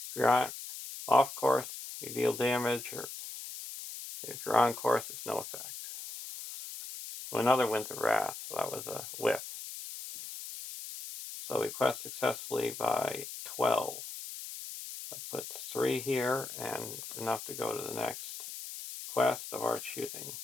If you're off course, you deal damage, or if you're on course, it's no effect. Well, another Winds of Wrath, so that was a whiff. So we quest successfully by 12. That puts 3 here and enough to go to the next quest of our choosing.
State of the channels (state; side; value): noise; left; hiss, 10 dB below the sound